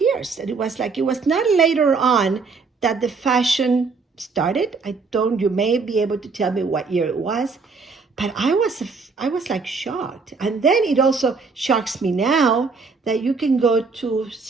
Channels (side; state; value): left; quieter; 4.6 dB